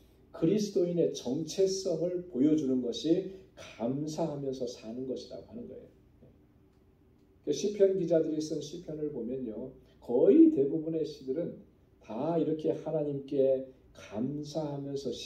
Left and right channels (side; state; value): both; identical; correlation 1.00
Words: 그리스도인의 정체성을 보여주는 것이 감사하면서 사는 것이라고 하는 거예요. 시편 기자들이 쓴 시편을 보면요, 거의 대부분의 시들은 다 이렇게 하나님께 감사하면서